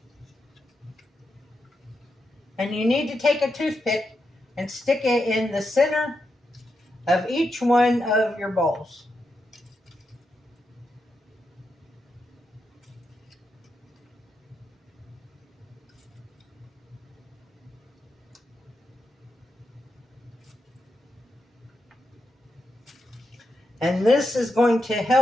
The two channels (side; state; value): both; normal; correlation 0.85